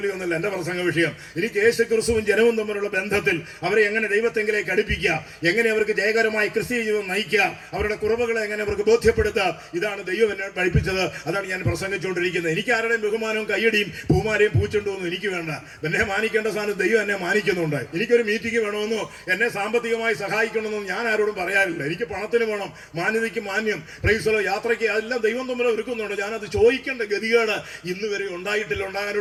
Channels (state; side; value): identical; both; correlation 1.00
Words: ഒന്നുമില്ല എന്റെ പ്രസംഗ വിഷയം. എനിക്ക് യേശുക്രിസ്തുവും ജനവും തമ്മിലുള്ള ബന്ധത്തിൽ അവരെ എങ്ങനെ ദൈവത്തെങ്കിലേക്ക് അടുപ്പിക്കാം, എങ്ങനെ അവർക്ക് ജയകരമായി ക്രിസ്തീയ ജീവിതം നയിക്കാം, അവരുടെ കുറവുകളെ എങ്ങനെ അവർക്ക് ബോധ്യപ്പെടുത്താം, ഇതാണ് ദൈവം എന്നെ പഠിപ്പിച്ചത്. അതാണ് ഞാൻ പ്രസംഗിച്ചുകൊണ്ടിരിക്കുന്നത്. എനിക്ക് ആരുടെയും ബഹുമാനവും കയ്യടിയും പൂമാരെയും പൂച്ചുണ്ടോന്നും എനിക്ക് വേണ്ട. എന്നെ മാനിക്കേണ്ട സ്ഥാനത്ത് ദൈവം എന്നെ മാനിക്കുന്നുണ്ട്. എനിക്കൊരു മീറ്റിംഗ് വേണമെന്നോ എന്നെ സാമ്പത്തികമായി സഹായിക്കണമെന്നും ഞാൻ ആരോടും പറയാറില്ല. എനിക്ക് പണത്തിന് വേണം, മാന്യതയ്ക്ക് മാന്യം, പ്രൈസലോ യാത്രയ്ക്ക്, അതെല്ലാം ദൈവം തമ്മിൽ ഒരുക്കുന്നുണ്ട്. ഞാനത് ചോദിക്കേണ്ട ഗതികേട് ഇന്ന് വരെ ഉണ്ടായിട്ടില്ല,